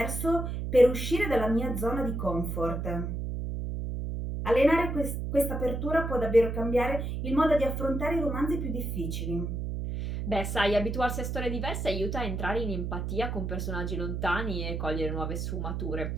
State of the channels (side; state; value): right; noise; hum, 3 dB below the sound